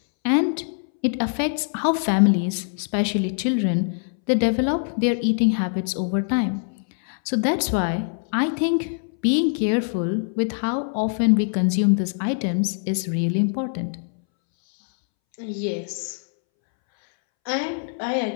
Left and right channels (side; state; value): right; silent; 63 dB below the other